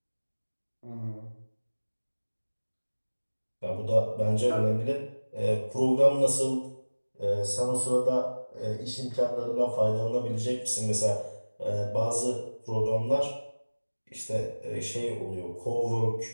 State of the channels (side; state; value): both; inverted; correlation -1.00